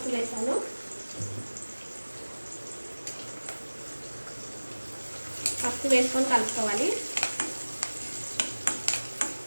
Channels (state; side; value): inverted; both; correlation -1.00